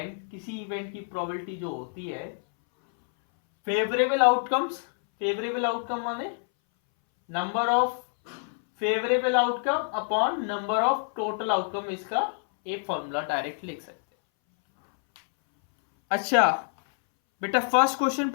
किसी event की probability जो होती है, favourable outcomes, favourable outcome माने number of favourable outcome upon number of total outcome, इसका एक formula direct लिख सकते हैं। अच्छा बेटा, फर्स्ट क्वेश्चन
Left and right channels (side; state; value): right; silent; 60 dB below the other